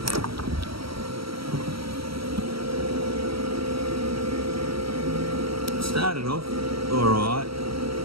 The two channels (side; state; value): left; late; 0.75 ms